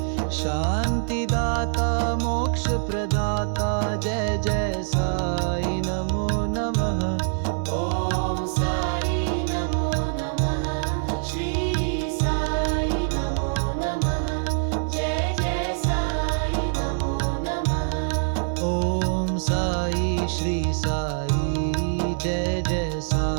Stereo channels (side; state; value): left; silent; 62 dB below the other